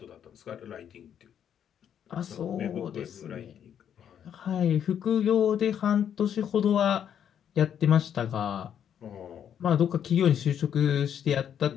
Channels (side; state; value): right; quieter; 9.0 dB